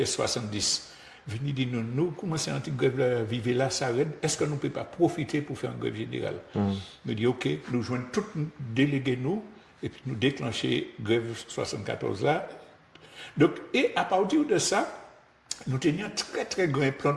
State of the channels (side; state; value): both; identical; correlation 1.00